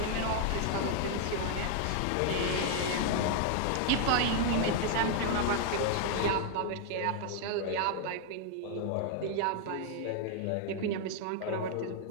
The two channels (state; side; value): different; both; correlation 0.00